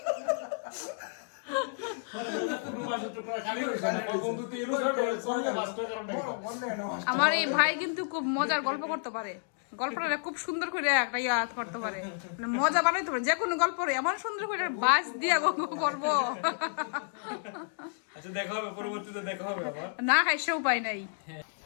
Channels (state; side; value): silent; right; digital silence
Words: আমার এই ভাই কিন্তু খুব মজার গল্প করতে পারে গল্পটা খুব সুন্দর করে একটা ইয়াদ করতে পারে মানে মজা বানাইতে পারে যে কোনো গল্প এমন সুন্দর করে বাস দিয়া করবো আচ্ছা দেখা হবে পরবর্তীতে দেখা হবে আবার না খাই সে উপায় নাই